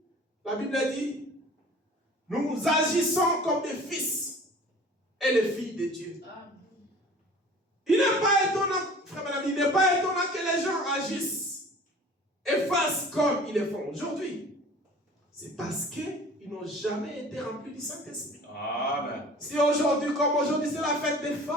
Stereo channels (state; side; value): normal; both; correlation 0.45